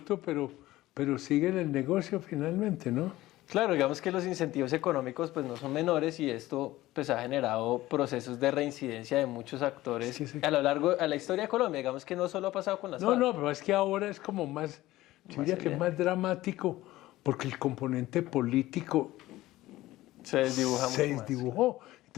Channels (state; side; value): quieter; right; 16.7 dB